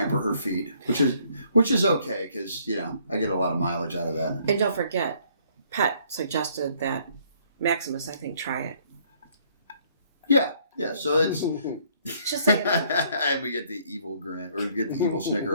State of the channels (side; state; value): both; inverted; correlation -0.64